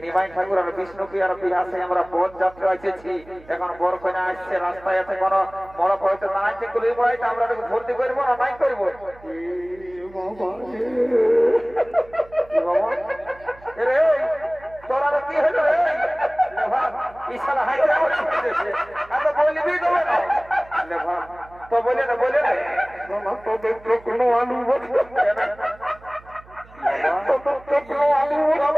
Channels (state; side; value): noise; right; hum, 23 dB below the sound